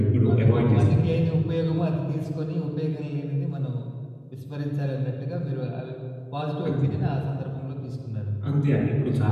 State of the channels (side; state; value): both; identical; correlation 1.00